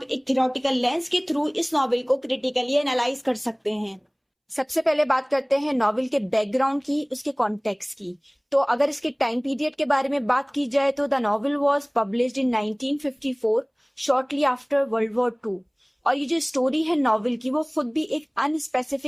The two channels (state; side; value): identical; both; correlation 1.00